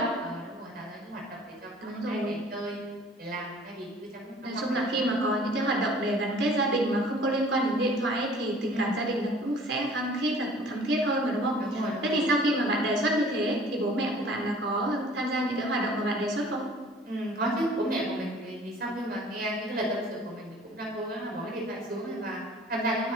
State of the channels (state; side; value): normal; both; correlation 0.51